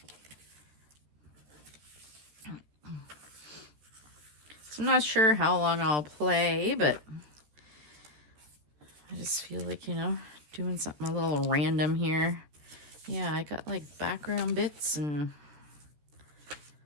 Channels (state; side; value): late; left; 13 ms